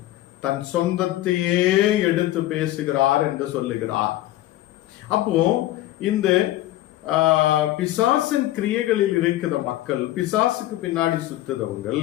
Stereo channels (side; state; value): right; quieter; 15.2 dB